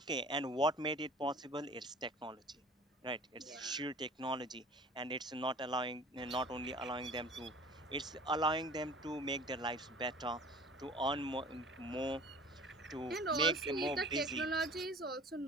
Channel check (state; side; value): normal; both; correlation 0.45